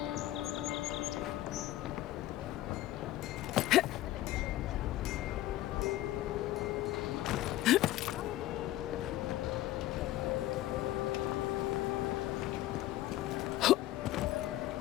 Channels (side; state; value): right; quieter; 15.2 dB